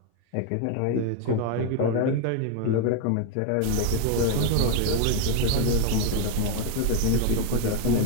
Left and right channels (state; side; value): different; both; correlation 0.01